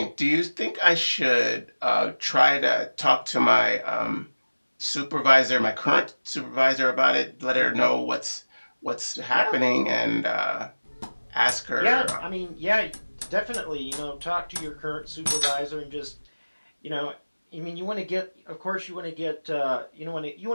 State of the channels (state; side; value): inverted; both; correlation -1.00